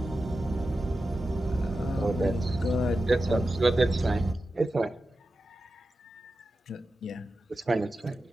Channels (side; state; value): both; normal; correlation 0.92